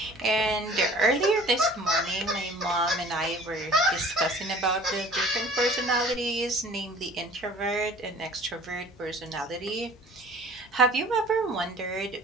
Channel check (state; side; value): normal; both; correlation 0.48